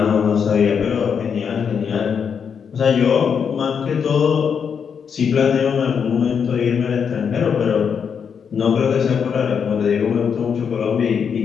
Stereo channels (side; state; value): right; quieter; 6.9 dB